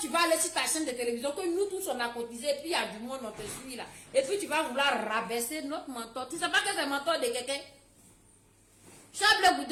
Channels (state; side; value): identical; both; correlation 1.00